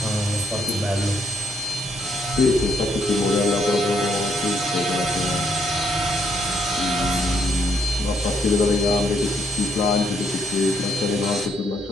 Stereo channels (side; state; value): both; normal; correlation 0.73